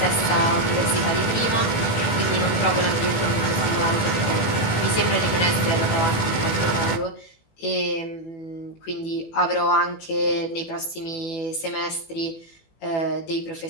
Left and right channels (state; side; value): late; right; 18 ms